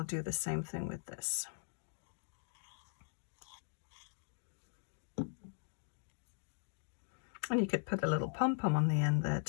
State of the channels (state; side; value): silent; right; digital silence